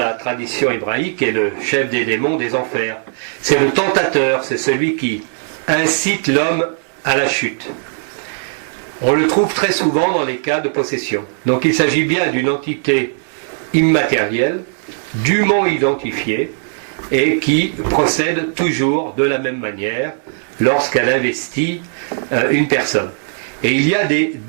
tradition hébraïque est le chef des démons des enfers. C'est le tentateur, c'est celui qui incite l'homme à la chute. On le trouve très souvent dans les cas de possession. Donc il s'agit bien d'une entité immatérielle, dûment identifiée, et qui procède toujours de la même manière lorsqu'elle investit une personne. Et il y a des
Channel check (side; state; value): left; silent; digital silence